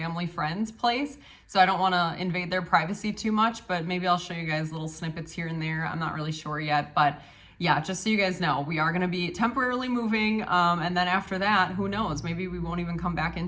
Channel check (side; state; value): both; identical; correlation 1.00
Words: friend's place. So I don't want to invade their privacy too much, but maybe I'll show you guys little snippets here and there. I'm not really sure yet, but yeah, just so you guys know, we are going to be temporarily moving. And then after that, who knows? Maybe we won't even come back